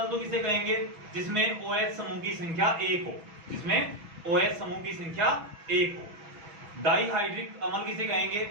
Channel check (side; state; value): left; late; 6.2 ms